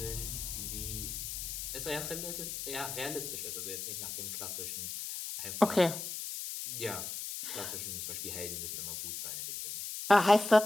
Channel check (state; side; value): noise; left; hiss, 5 dB below the sound